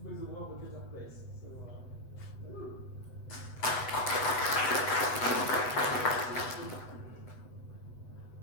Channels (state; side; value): late; right; 8.0 ms